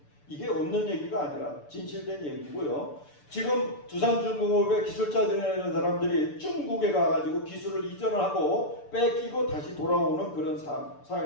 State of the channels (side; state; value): right; late; 6.9 ms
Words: 이게 없는 얘기가 아니라 진실된 얘기고요. 지금 두산중공업의 기술자들이라는 사람들이 중국에 가가지고 기술을 이전을 하고 뺏기고 다시 돌아오는 그런